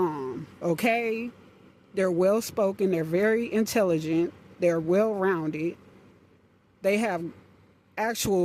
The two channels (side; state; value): both; identical; correlation 1.00